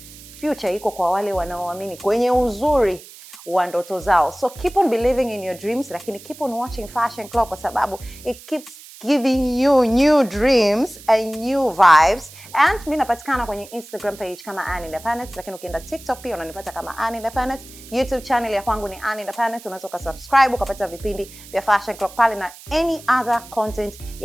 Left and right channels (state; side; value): noise; right; hiss, 18 dB below the sound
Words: future iko kwa wale wanaoamini kwenye uzuri wa ndoto zao. So keep on believing in your dreams, lakini keep on watching Fashion Club kwa sababu it keeps giving you new dreams and new vibes. And mimi napatikana kwenye Instagram page kama Ann Independent, lakini ukienda TikTok pia unanipata kama Ann Independent. YouTube channel ya kwangu ni Ann Independent, unaweza ukasubscribe ukapata vipindi vya Fashion Club pale na any other content